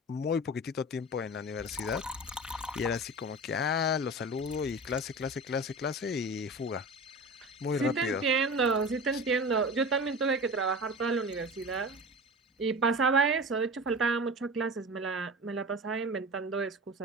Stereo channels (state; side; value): normal; both; correlation 0.33